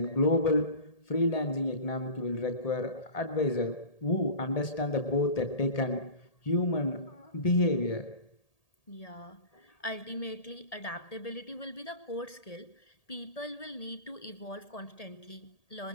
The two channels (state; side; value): late; right; 1.8 ms